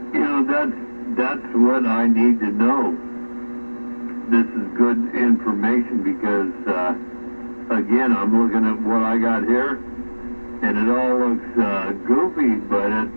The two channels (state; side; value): inverted; both; correlation -1.00